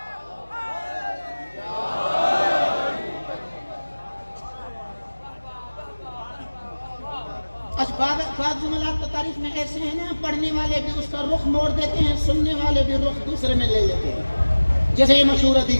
بعض جملات تو تاریخ میں ایسے ہیں نا، پڑھنے والے بھی اس کا رخ موڑ دیتے ہیں، سننے والے بھی رخ دوسرے میں لے لیتے ہیں. جیسے یہ مشہور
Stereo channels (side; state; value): both; inverted; correlation -1.00